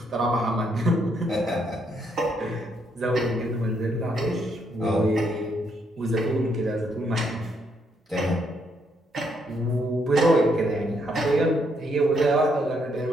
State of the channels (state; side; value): normal; both; correlation 0.74